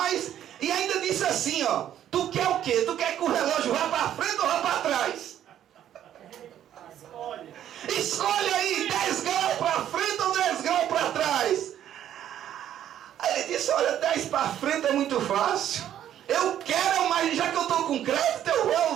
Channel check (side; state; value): left; quieter; 10.9 dB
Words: e ainda disse assim, ó, tu quer o quê? Tu quer que o relógio vá para frente ou vá para trás? Escolhe aí, 10 graus para frente ou 10 graus para trás? Aí ele disse, olha, 10 para frente é muito fácil. Eu quero, mas já que eu estou com crédito, eu vou